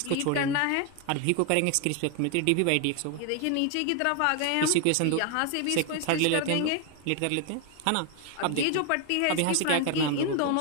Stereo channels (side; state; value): both; different; correlation 0.01